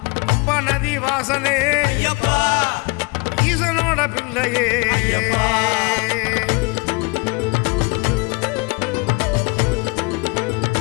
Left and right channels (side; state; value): right; quieter; 28.2 dB